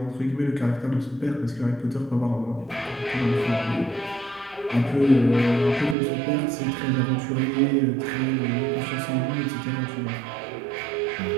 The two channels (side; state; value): left; drops out; at 6.0 s